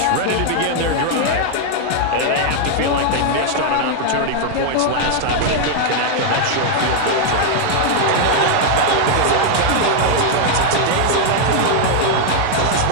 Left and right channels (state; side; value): different; both; correlation 0.00